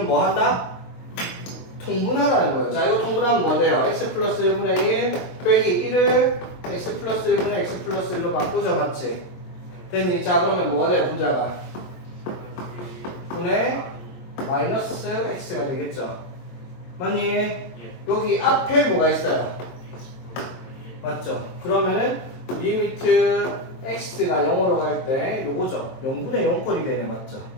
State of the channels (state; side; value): late; right; 22 ms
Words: 뭐 한다? 통분하라는 거예요. 자, 이거 통분하면 뭐 돼요? x 플러스 1분의 1 빼기 1을 x 플러스 1분의 x 플러스 1로 바꾸죠. 맞지? 됐니? 자, 그러면 뭐가 돼요? 분자가? 분의 마이너스 x가 되겠죠. 맞니? 여기 앞에 뭐가 있어요? 맞죠? 그러면은 리미트 x가 0으로 갈 때 요거죠. 0분의 0꼴이 되네. 맞죠?